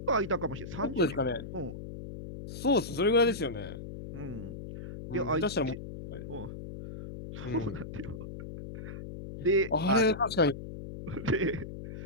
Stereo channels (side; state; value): left; noise; hum, 10 dB below the sound